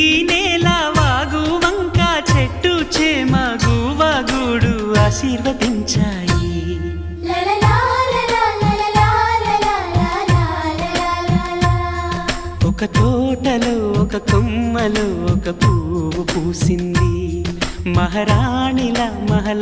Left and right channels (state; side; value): identical; both; correlation 1.00